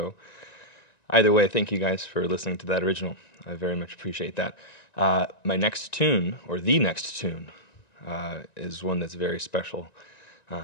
Either way, thank you guys for listening to that original. I very much appreciate that. My next tune, or the next tune, is one that's very special,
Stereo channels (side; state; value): right; late; 1.9 ms